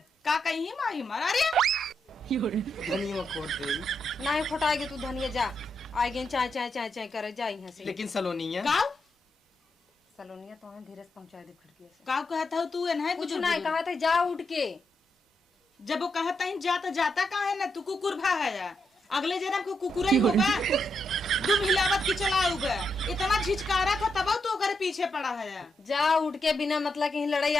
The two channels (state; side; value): normal; both; correlation 0.82